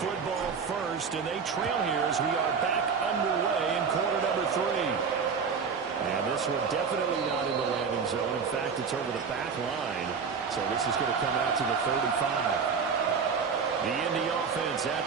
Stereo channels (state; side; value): quieter; left; 5.8 dB